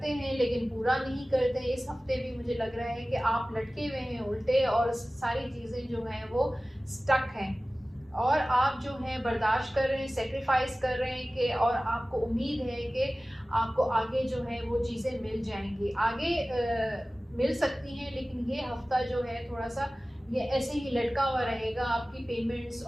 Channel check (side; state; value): both; normal; correlation 0.97